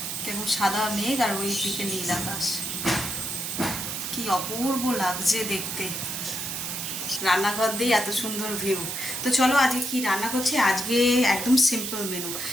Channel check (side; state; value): right; noise; hiss, 4 dB below the sound